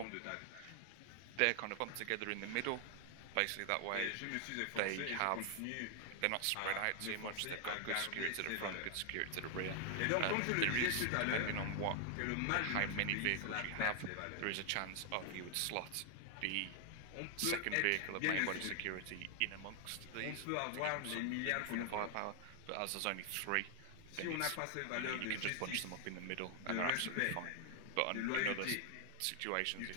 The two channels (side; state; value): both; different; correlation 0.00